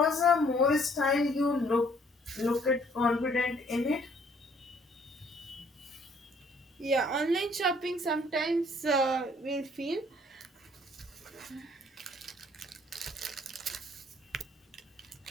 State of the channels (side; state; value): both; normal; correlation 0.62